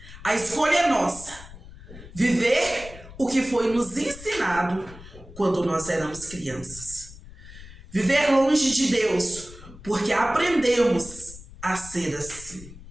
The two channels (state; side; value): noise; left; rumble, 17 dB below the sound